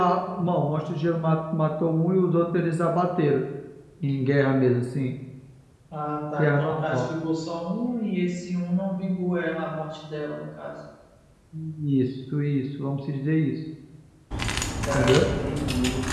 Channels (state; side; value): identical; both; correlation 1.00